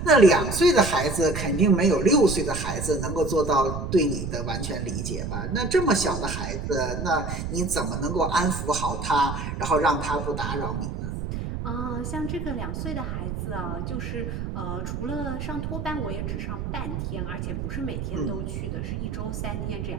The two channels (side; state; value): right; noise; rumble, 5 dB below the sound